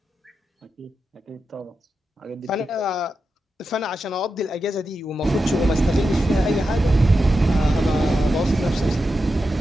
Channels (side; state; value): both; normal; correlation 0.89